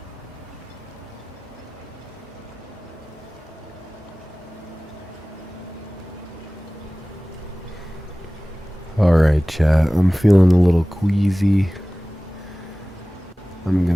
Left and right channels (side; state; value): both; normal; correlation 0.98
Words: Alright, chat. I'm feeling a little queasy. I'm